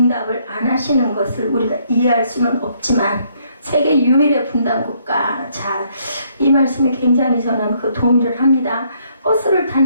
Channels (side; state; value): both; inverted; correlation -0.69